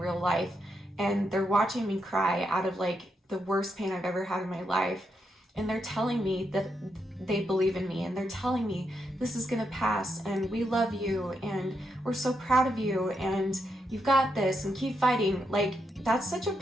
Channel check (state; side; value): normal; both; correlation 0.82